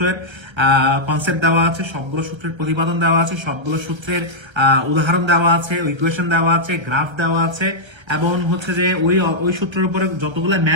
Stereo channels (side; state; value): left; late; 1.3 ms